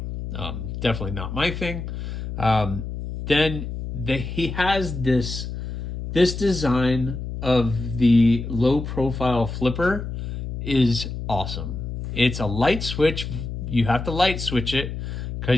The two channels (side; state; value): left; noise; hum, 6 dB below the sound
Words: Definitely not my thing. Then he has this design of the low profile flipper is awesome. It's a light switch. You have to light switch it